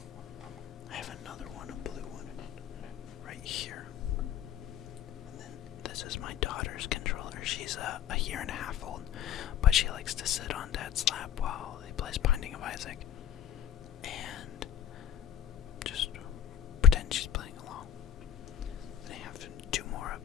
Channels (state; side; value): quieter; right; 9.8 dB